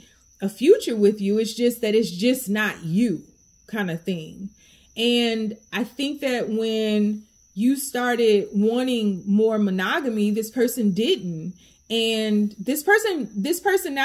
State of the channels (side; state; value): both; identical; correlation 1.00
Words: a future with you. It's just that it's just not you kind of thing. And I think that when you started wanting more monogamy, this person didn't. And this person,